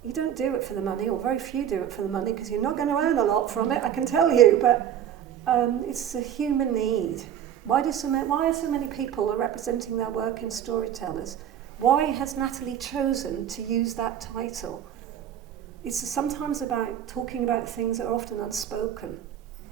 You don't do it for the money, or very few do it for the money, because you're not going to earn a lot from it, I can tell you, but it's a human need. Why are so many people representing their work in Storytellers? Why has Natalie chosen to use that title? It's sometimes about talking about things that are often unspoken.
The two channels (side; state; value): left; quieter; 9.9 dB